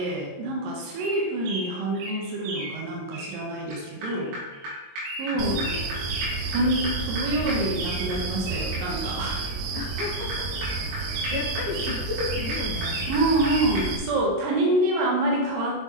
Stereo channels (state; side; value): late; left; 22 ms